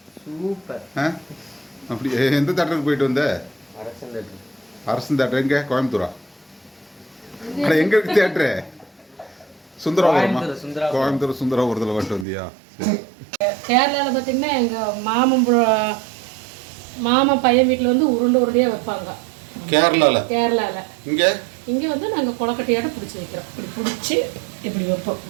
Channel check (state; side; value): drops out; left; at 12.2 s